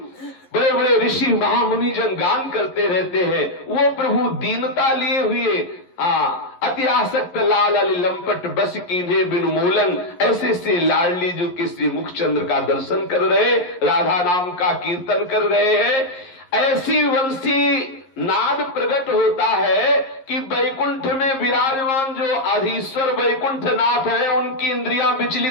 बड़े बड़े ऋषि महामुनि जन गान करते रहते हैं। वो प्रभु दीनता लिए हुए अति आसक्त लाल अली लंपट बस कीन्हे बिनु मूलन, ऐसे से लाडली जो कि श्री मुखचंद्र का दर्शन कर रहे, राधा नाम का कीर्तन कर रहे हैं। ऐसी वंशी नाद प्रकट होता है कि बैकुंठ में विराजमान जो अधीश्वर बैकुंठ नाथ है, उनकी इंद्रियां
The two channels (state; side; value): late; right; 11 ms